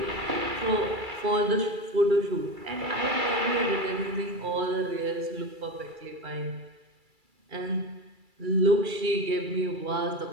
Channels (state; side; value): late; left; 2.3 ms